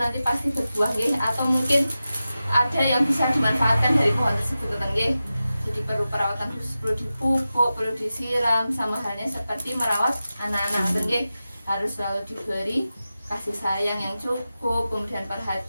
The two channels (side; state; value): both; inverted; correlation -0.93